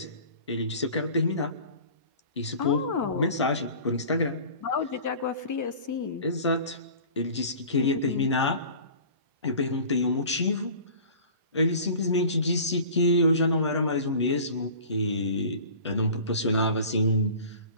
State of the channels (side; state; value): both; inverted; correlation -0.42